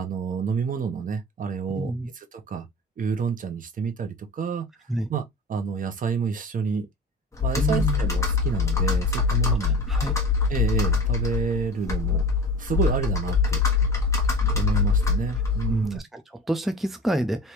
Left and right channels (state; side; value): normal; both; correlation 0.36